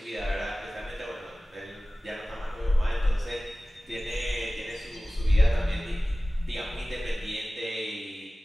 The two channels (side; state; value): both; normal; correlation 0.97